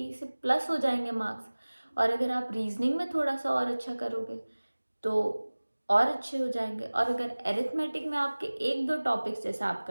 से प्लस हो जाएंगे मार्क्स। और अगर आप रीजनिंग में थोड़ा सा और अच्छा करोगे तो और अच्छे हो जाएंगे। और अगर एरिथमेटिक में आपके एक दो टॉपिक्स जैसे आप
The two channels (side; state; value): both; inverted; correlation -1.00